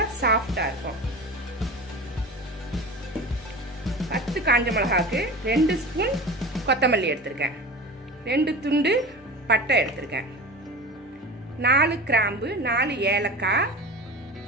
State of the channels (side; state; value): both; normal; correlation 0.32